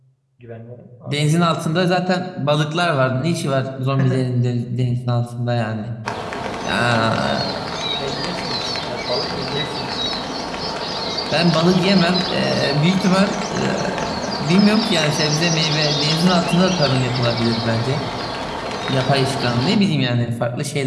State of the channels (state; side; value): identical; both; correlation 1.00